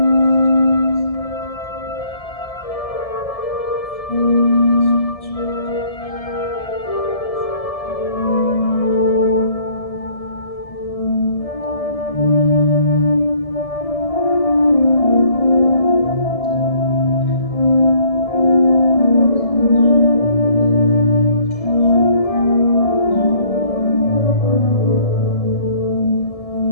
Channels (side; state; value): right; late; 1.7 ms